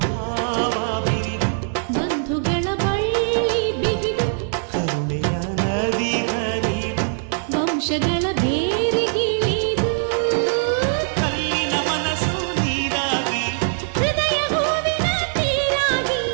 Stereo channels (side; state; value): left; silent; 64 dB below the other